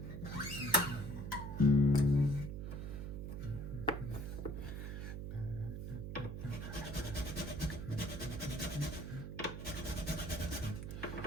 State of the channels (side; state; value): right; noise; hum, 6 dB below the sound